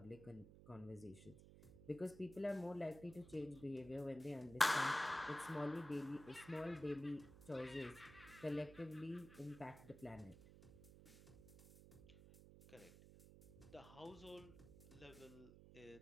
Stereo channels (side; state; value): right; noise; hum, 17 dB below the sound